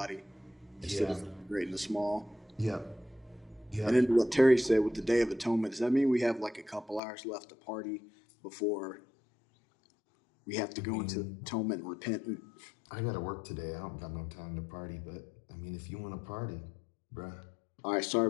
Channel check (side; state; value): right; drops out; at 7.0 s